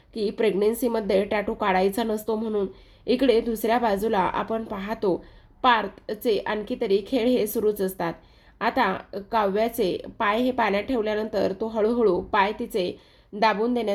की प्रेग्नेन्सीमध्ये टॅटू काढायचा नसतो म्हणून. इकडे दुसऱ्या बाजूला आपण पाहतो पार्थचे आणखी तरी खेळ हे सुरूच असतात. आता काव्याचे पाय हे पाण्यात ठेवल्यानंतर तो हळूहळू पाय तिचे दाबून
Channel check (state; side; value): identical; both; correlation 1.00